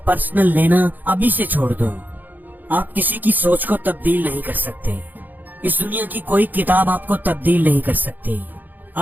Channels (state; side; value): late; left; 0.086 ms